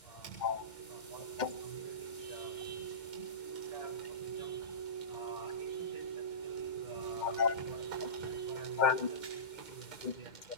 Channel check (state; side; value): late; right; 2.1 ms